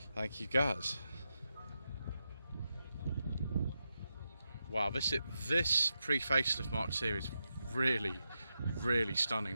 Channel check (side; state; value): both; inverted; correlation -0.87